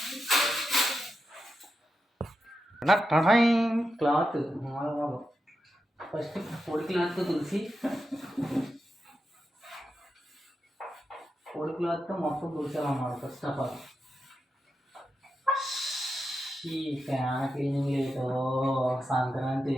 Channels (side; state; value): both; normal; correlation 0.87